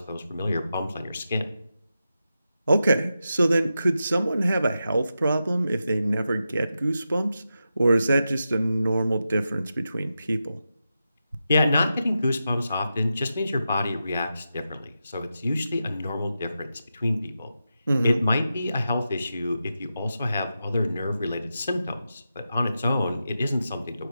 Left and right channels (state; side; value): inverted; both; correlation -0.89